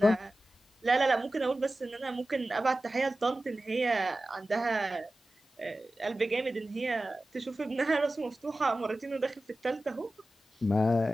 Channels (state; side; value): normal; both; correlation 0.95